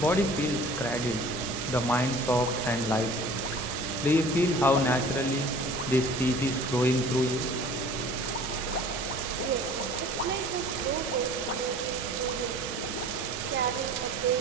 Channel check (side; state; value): both; normal; correlation 0.46